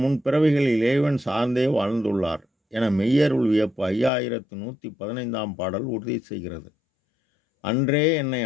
முன் பிறவிகளில் இறைவன் சார்ந்தே வாழ்ந்துள்ளார் என மெய்யருள் வியப்பு 5115ஆம் பாடல் உறுதி செய்கிறது. அன்றே என்னை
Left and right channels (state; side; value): drops out; right; at 4.1 s